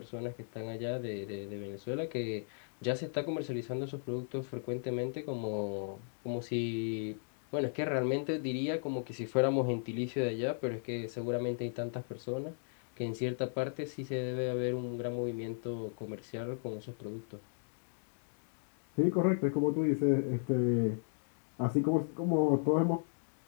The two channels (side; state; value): right; silent; digital silence